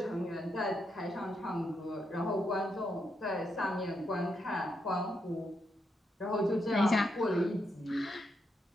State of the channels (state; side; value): normal; both; correlation 0.81